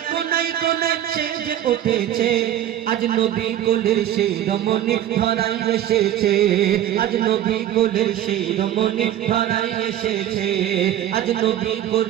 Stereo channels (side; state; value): left; quieter; 11.7 dB